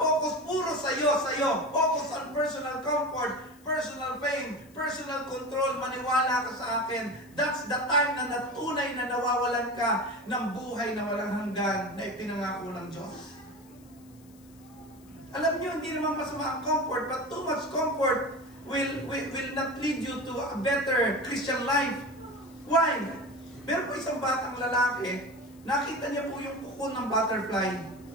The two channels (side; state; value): left; noise; hiss, 28 dB below the sound